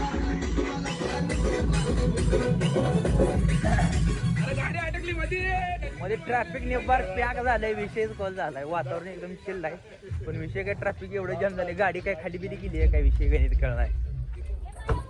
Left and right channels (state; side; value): identical; both; correlation 1.00